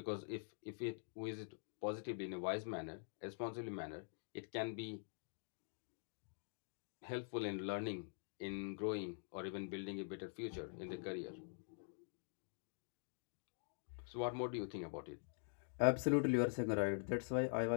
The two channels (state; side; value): silent; right; digital silence